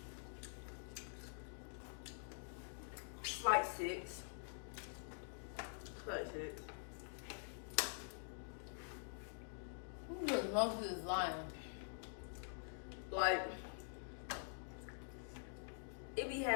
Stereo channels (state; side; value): silent; right; digital silence